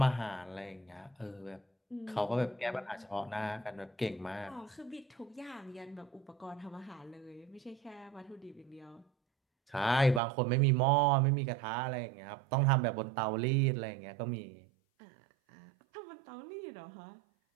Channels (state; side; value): drops out; left; at 10.2 s